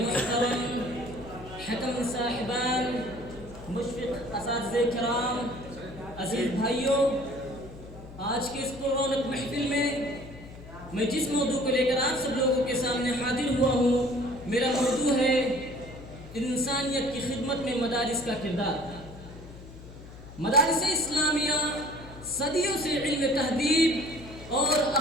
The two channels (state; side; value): noise; left; hum, 16 dB below the sound